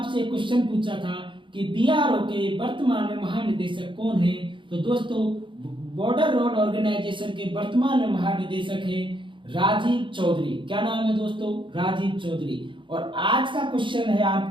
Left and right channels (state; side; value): late; left; 0.24 ms